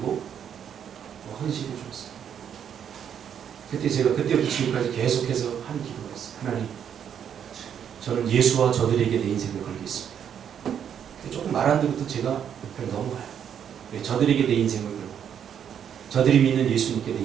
헌신해 줬어요. 그때 제가 그때부터 지금까지 계속해서 한 기도가 있어요. 하나님, 저는 예수와 저들에게 내 인생을 걸겠습니다. 조금 말 안 듣고도 제가 그냥 넘어가요. 저들에게 내 인생을 걸고 저들이 믿는 예수님께 내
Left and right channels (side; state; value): left; quieter; 8.6 dB